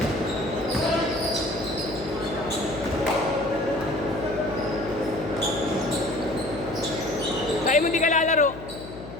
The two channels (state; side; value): noise; left; hum, 13 dB below the sound